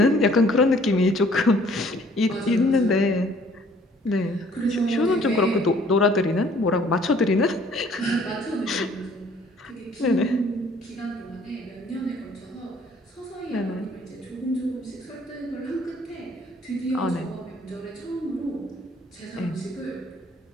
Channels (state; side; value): normal; both; correlation 0.58